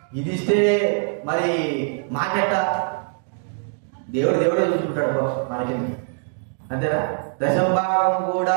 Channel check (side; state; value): left; silent; 63 dB below the other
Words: ఇది ఇస్తే మరి మాకెట్ట? దేవుడే చూసుకుంటాడు మనకి, అంతేనా? దశమ భాగం